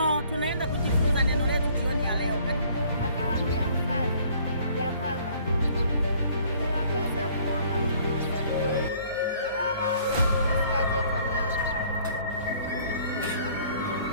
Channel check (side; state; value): both; inverted; correlation -0.58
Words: tunaenda kujifunza neno letu jioni ya leo. Akamwambia mfalme ya kwamba imewapasa kuomba Mungu siku zote, wala usikate tamaa.